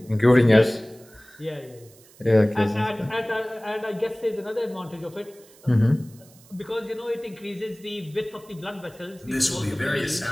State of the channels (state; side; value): noise; right; hiss, 26 dB below the sound